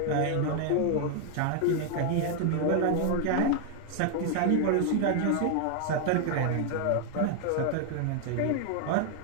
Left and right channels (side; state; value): both; different; correlation 0.00